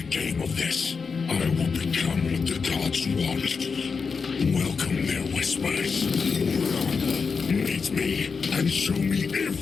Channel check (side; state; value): right; quieter; 5.2 dB